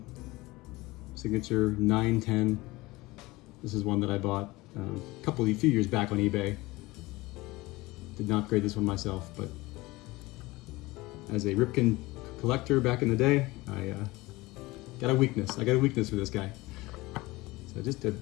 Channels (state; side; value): quieter; right; 20.9 dB